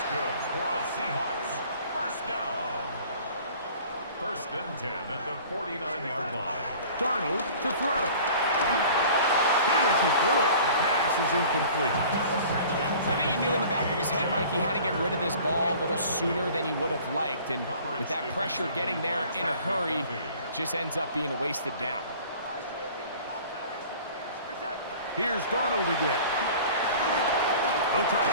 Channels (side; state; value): both; inverted; correlation -0.46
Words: good for a Seahawks first down. First and 10 at the 49-yard line. Darnold to throw. Hit as he threw it. The pass is incomplete. I think he knew in the back of his head, Mike, he had to get rid of this ball a little sooner than he would have liked. And with that pressure getting there in a hurry, just ends up being a wasted down. Here's Darnold again. They'll try